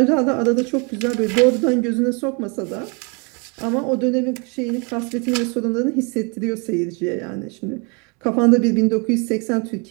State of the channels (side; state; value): left; quieter; 32.7 dB